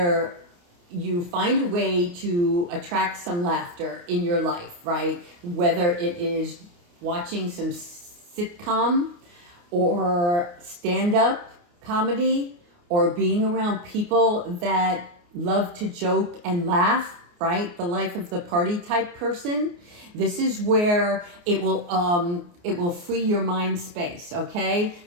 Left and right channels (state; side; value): late; left; 29 ms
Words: you find a way to attract some laughter in your life, right? Whether it is watching some sitcom or stand-up comedy, or being around people that love to joke and laugh, right? The life of the party type person. This is where it will free your mind space, okay?